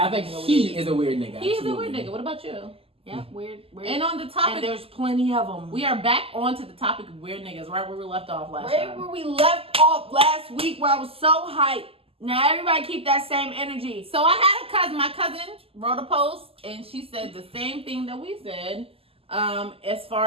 I think he is a weird nigga. He is a absolutely. weird nigga. What about you? Yeah, weird. And on the topic, And there's plenty of them. we are back onto the topic of weird niggas, right where we left off last right time. where we left off last week, where I was so hyped. Now everybody keep that same energy. So I had a cousin. My cousin wrote a post, and she said the same thing that we said. As far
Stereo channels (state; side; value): late; left; 0.28 ms